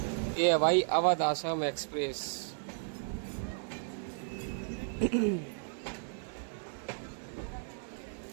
ये है भाई अवध आसाम एक्सप्रेस।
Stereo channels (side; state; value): left; silent; digital silence